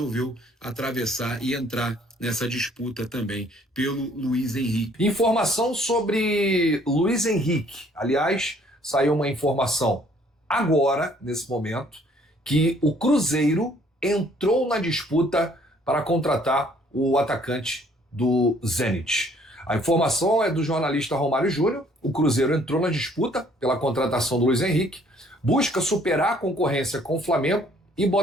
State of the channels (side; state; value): both; normal; correlation 0.61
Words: atravessar e entrar nessa disputa também pelo Luiz Henrique. Informação sobre Luiz Henrique. Aliás, saiu uma informação agora, nesse momento, que o Cruzeiro entrou na disputa para contratar o atacante do Zenit. A informação é do jornalista Romário Júnior. O Cruzeiro entrou na disputa pela contratação do Luiz Henrique, busca superar a concorrência com o Flamengo e